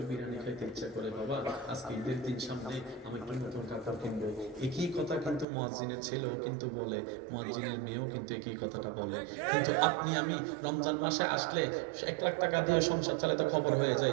বিরিয়ানি খাইতে ইচ্ছা করে, বাবা আজকে ঈদের দিন সামনে আমি একটু নতুন কাপড় কিনবো, একই কথা কিন্তু মুয়াজ্জিনের ছেলেও কিন্তু বলে, মুয়াজ্জিনের মেয়েও কিন্তু একই কথাটা বলে। কিন্তু আপনি আমি রমজান মাসে আসলে 1 লাখ টাকা দিয়ে সংসার চালাতে খবর হয়ে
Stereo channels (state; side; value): drops out; left; at 5.5 s